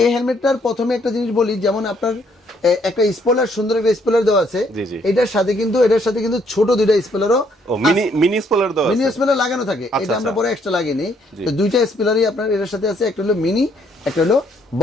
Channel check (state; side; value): normal; both; correlation 0.68